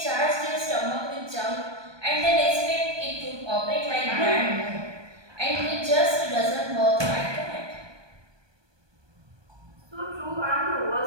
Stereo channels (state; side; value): late; left; 1.2 ms